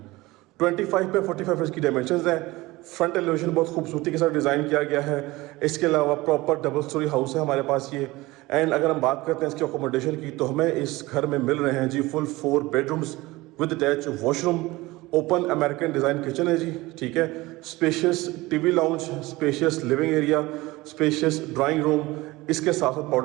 25 पे 45 की डायमेंशंस हैं। फ्रंट एलिवेशन बहुत खूबसूरती के साथ डिज़ाइन किया गया है। इसके अलावा प्रॉपर डबल स्टोरी हाउस है हमारे पास ये। एंड अगर हम बात करते हैं इसकी अकोमोडेशन की तो हमें इस घर में मिल रहे हैं जी full 4 bedrooms with attach washroom, open American design kitchen है जी, ठीक है। Spacious TV lounge, spacious living area, spacious drawing room, इसके साथ साथ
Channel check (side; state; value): left; quieter; 20.3 dB